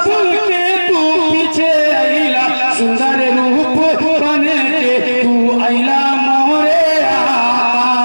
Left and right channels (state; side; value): inverted; both; correlation -1.00